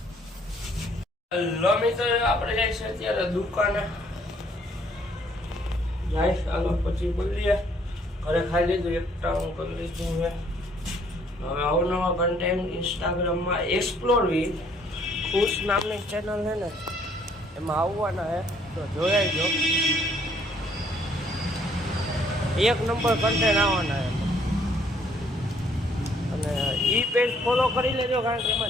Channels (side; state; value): both; normal; correlation 0.64